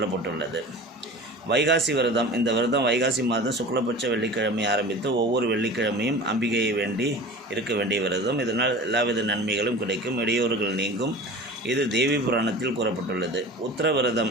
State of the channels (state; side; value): normal; both; correlation 0.37